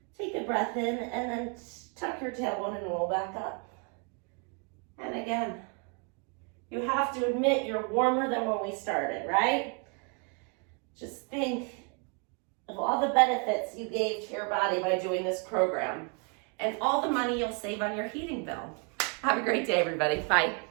Take a breath in and then tuck your tailbone and roll back up. And again, you have to admit you're warmer than when we started, right? Just think of all the benefits you gave to your body by doing this program and all the money you'll save on your heating bill. Have a great day, everybody. Bye.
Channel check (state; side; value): quieter; left; 36.3 dB